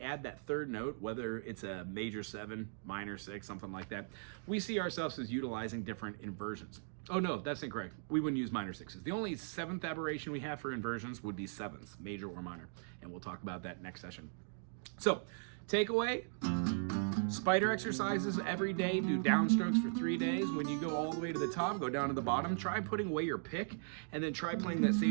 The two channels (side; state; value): left; silent; digital silence